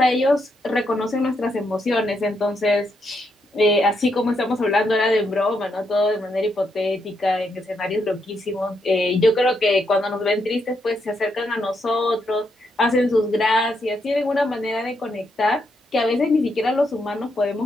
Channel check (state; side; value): normal; both; correlation 0.79